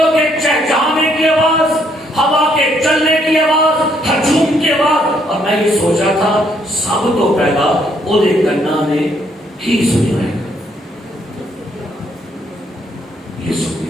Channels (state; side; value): normal; both; correlation 0.70